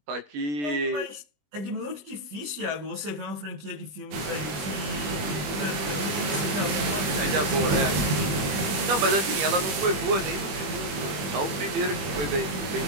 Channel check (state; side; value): late; left; 21 ms